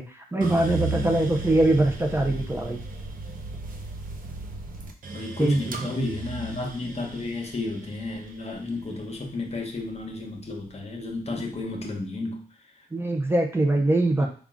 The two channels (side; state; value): both; normal; correlation 0.85